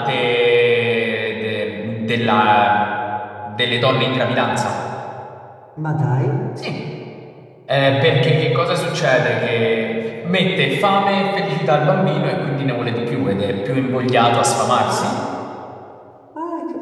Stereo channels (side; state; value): both; identical; correlation 1.00